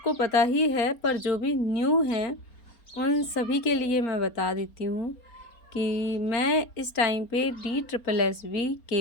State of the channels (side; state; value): right; late; 4.3 ms